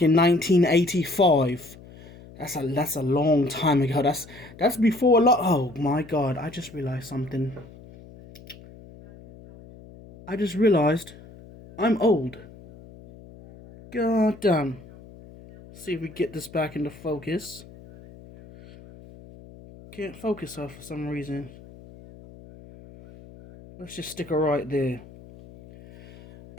in 1985. That's a long time ago. That's before a lot. Oh my God! I just realized something. I just realized I'm old. God damn. See if we get this back into focus. Can't focus her for some reason. Let's just stick her right there.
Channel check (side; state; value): left; noise; hum, 20 dB below the sound